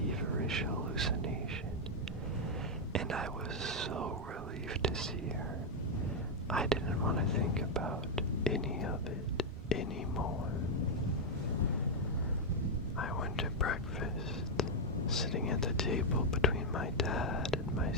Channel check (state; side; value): normal; both; correlation 0.00